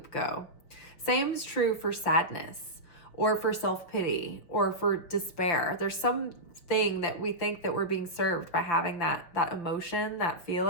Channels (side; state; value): right; late; 5.9 ms